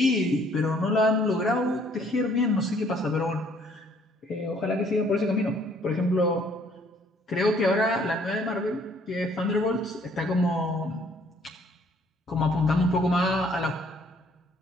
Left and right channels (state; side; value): normal; both; correlation 0.62